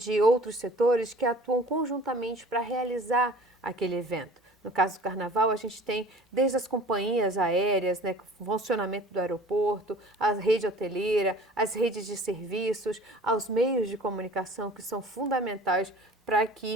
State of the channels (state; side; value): normal; both; correlation 0.46